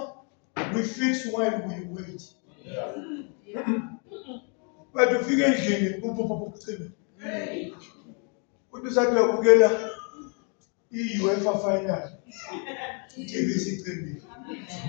we fix while we wait. But ufike endlini ucime. Uthi usathi uyabukela i-UEFA final. TV sicimile.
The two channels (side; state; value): right; quieter; 38.5 dB